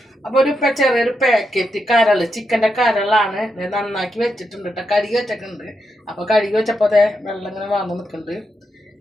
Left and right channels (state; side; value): normal; both; correlation 0.84